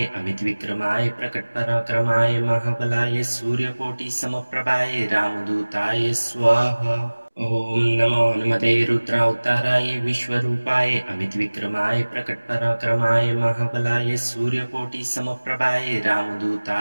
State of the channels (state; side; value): inverted; both; correlation -1.00